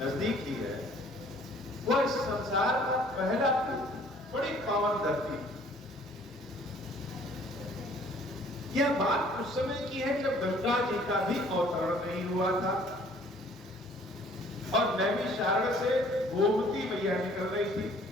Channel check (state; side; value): normal; both; correlation 0.56